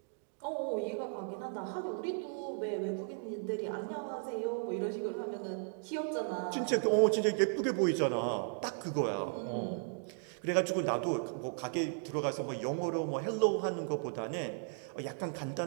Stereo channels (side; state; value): left; silent; 54 dB below the other